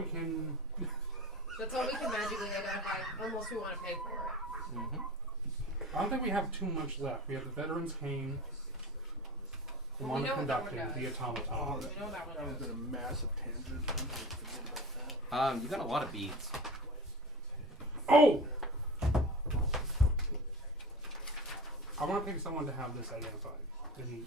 can. That's all we can magically identify, unless we want to pay for it. Mm-hmm. I don't think we have too much left. We have the Veterans Cane, the Well, we know what that one Conducting, does. the Automaton. We know that That one. was been a massive tangent. I'm gonna forget about that. You got a lot of beads. Oh! I want to pick someone to have this identified. And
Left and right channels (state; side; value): normal; both; correlation 0.32